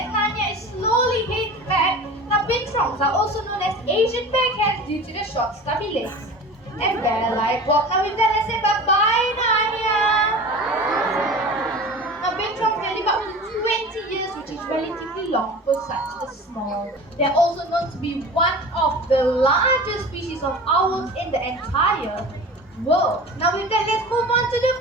Nanya is slowly heading back. Now bintrongs are also known as Asian bear cats due to the short stubby legs and bear-like walk. Now with that, let's say bye-bye, Nanya. Now bintrongs they live up to 20 years, which is relatively long for such a small. They're also known to be one of the largest species of owls in the entire world. Now with that, let's move on to the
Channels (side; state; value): both; normal; correlation 0.36